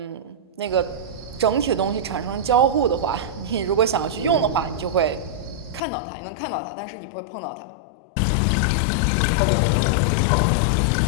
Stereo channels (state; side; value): drops out; right; at 5.8 s